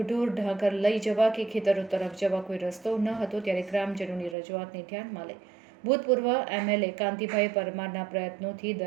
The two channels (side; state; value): left; drops out; at 4.4 s